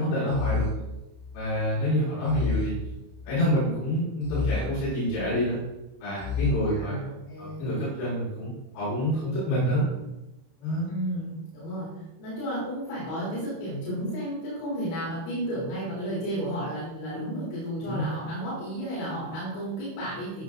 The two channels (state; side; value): late; right; 31 ms